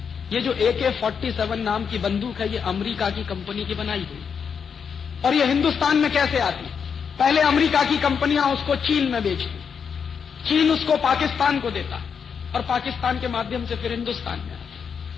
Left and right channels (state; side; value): quieter; right; 6.7 dB